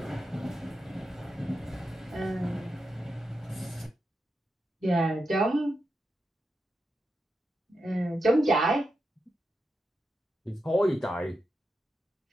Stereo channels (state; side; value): normal; both; correlation 0.87